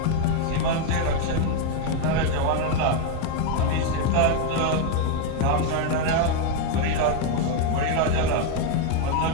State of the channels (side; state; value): both; different; correlation 0.01